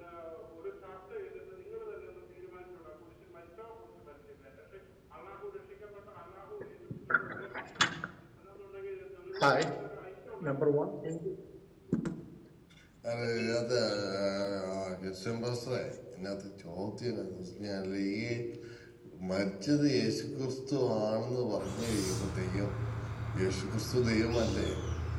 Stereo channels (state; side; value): identical; both; correlation 1.00